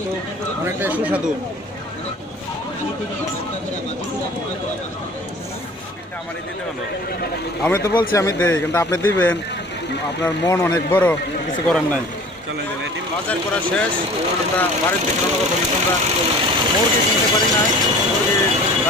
অনেকটাই সুস্বাদু আমি তো বলছি আমি দেই কিন্তু আপনি দিবেন আপনার মন অনেক বড় কিছু করার নাই বাজার করা শেষ আমরা বাড়ির দিকে রওনা করবো কিন্তু আমরা মুরগি কিনতে পারি নাই মুরগির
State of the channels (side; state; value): both; normal; correlation 0.45